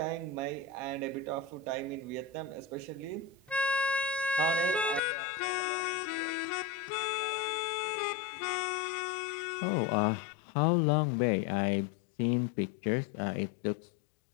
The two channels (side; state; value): right; drops out; at 5.0 s